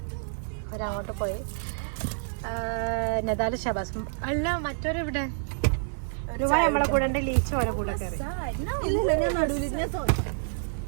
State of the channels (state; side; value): silent; left; digital silence